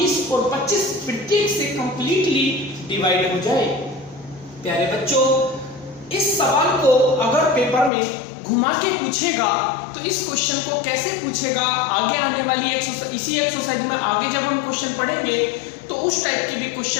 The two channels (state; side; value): drops out; right; at 7.9 s